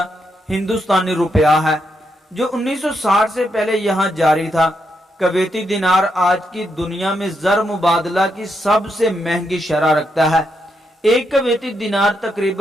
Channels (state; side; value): normal; both; correlation 0.81